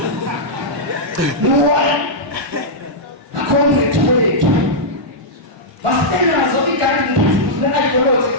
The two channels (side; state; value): left; late; 1.2 ms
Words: no acomrade wethu masitenazo i-guiding principles ne-ideology